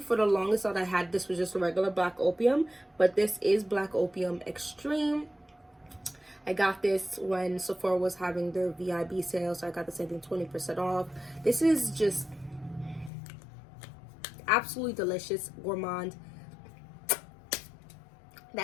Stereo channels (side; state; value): right; drops out; at 13.1 s